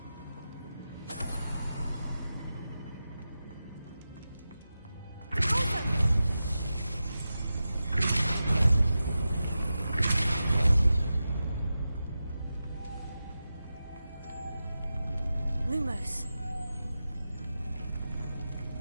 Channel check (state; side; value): inverted; both; correlation -0.92